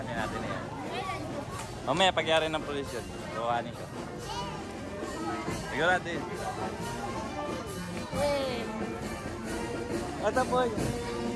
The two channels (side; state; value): both; identical; correlation 1.00